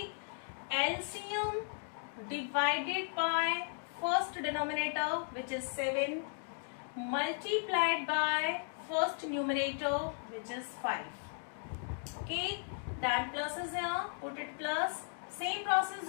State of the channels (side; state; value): right; silent; 54 dB below the other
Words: LCM divided by first denominator, which is 7, multiplied by first numerator, which is 5. Okay. Then plus is यहाँ, put it plus. Same process